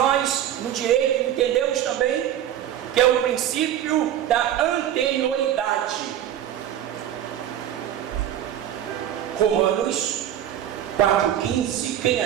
no direito entendemos também, que é o princípio da anterioridade. Romanos 4,15. Quem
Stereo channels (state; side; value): quieter; left; 11.0 dB